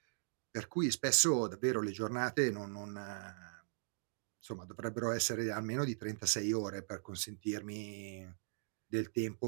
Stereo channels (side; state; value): left; silent; digital silence